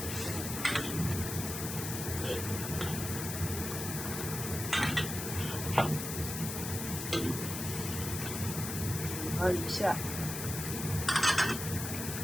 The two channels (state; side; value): noise; left; hiss, 5 dB below the sound